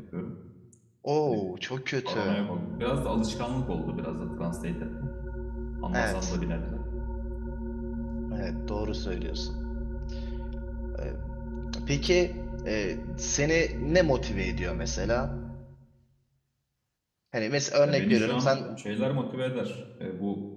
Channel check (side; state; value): both; identical; correlation 1.00